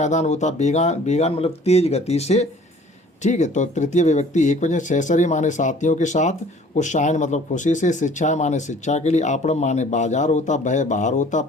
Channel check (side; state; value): both; normal; correlation 0.52